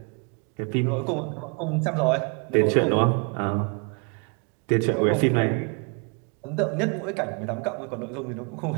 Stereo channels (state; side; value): quieter; left; 35.9 dB